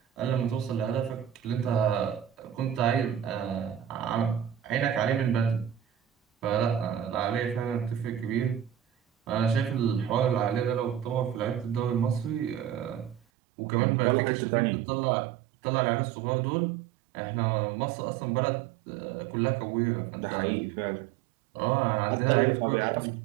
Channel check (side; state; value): left; drops out; at 13.2 s